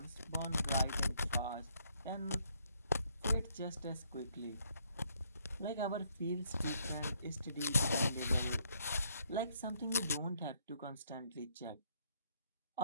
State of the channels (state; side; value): inverted; both; correlation -0.70